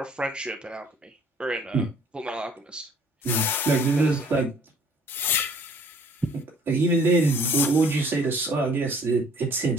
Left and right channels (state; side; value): normal; both; correlation 0.56